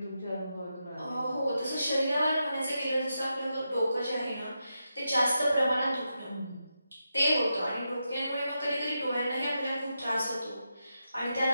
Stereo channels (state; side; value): inverted; both; correlation -0.87